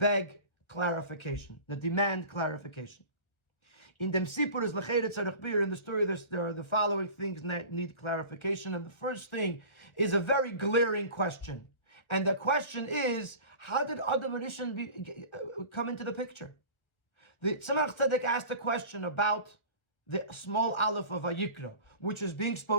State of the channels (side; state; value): right; late; 1.3 ms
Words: clarification, that demand clarification. In dem Sipur is Lechere Tzarech Bir, in the story there are the following things that need clarification, and the first thing is a very glaring question. And the question is, how did Adam Arishan come into the picture? The Tzemach Tzedek asked a question about the small Alef of Vayikra, which is being